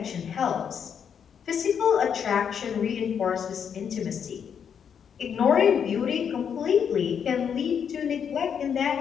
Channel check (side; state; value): right; quieter; 7.6 dB